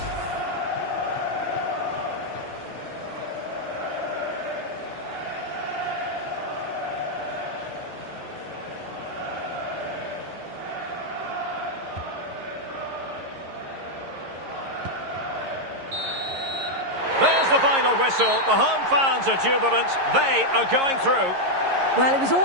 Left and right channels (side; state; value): left; late; 11 ms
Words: the final whistle. The home fans are jubilant. They are going through. Well, it was